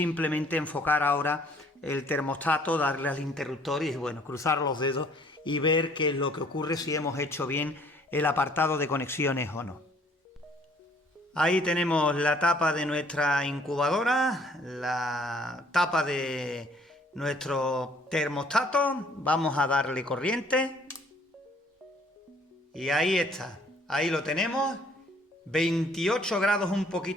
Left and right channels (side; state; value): both; normal; correlation 0.60